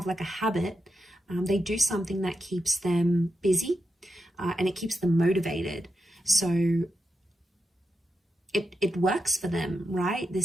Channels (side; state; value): both; normal; correlation 0.88